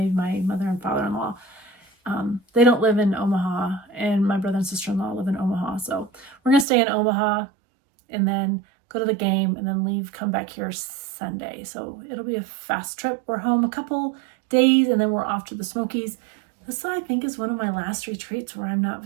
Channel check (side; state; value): left; drops out; at 6.7 s